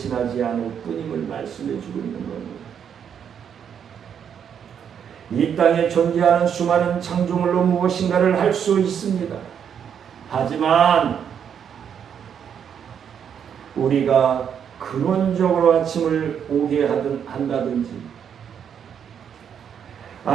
않을 뿐임을 말씀해주고 있는 겁니다. 이 땅에 존재하는 수많은 창조물로 무엇인가를 할 수 있습니다. 하지만 우리가 근원적으로 아침을 오게 한다든지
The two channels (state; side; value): quieter; left; 8.1 dB